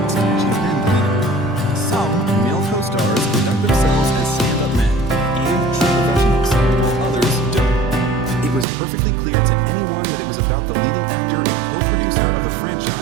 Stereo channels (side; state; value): left; drops out; at 8.7 s